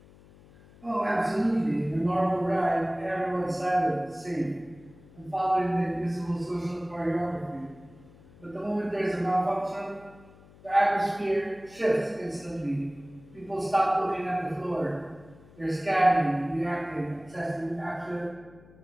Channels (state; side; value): noise; left; hum, 24 dB below the sound